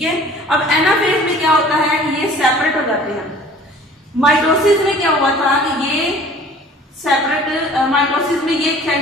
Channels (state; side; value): normal; both; correlation 0.49